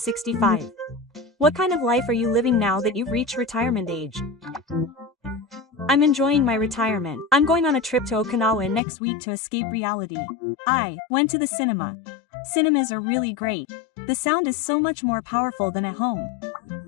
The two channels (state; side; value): drops out; right; at 8.8 s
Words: What kind of life are you living now that you've reached retirement age? I'm enjoying my retirement. I'm going on a trip to Okinawa next week to escape reality. I went to the cinema. Cinemas are really great. The sound is so much more powerful than at home.